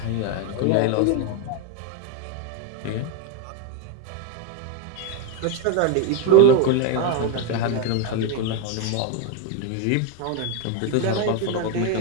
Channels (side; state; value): both; different; correlation 0.02